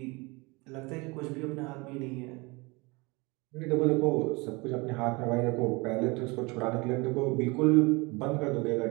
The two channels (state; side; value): quieter; left; 26.1 dB